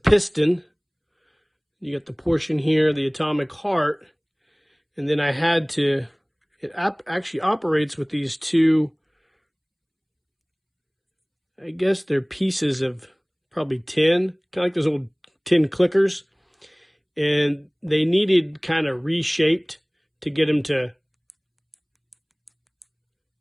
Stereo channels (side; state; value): both; identical; correlation 1.00